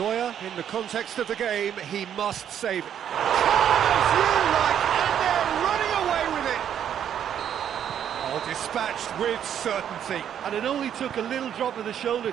in the context of the game, he must save it. As you like, and they're running away with it. Oh, dispatched with certainty. And it only took a little drop of the shoulder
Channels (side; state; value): left; quieter; 9.4 dB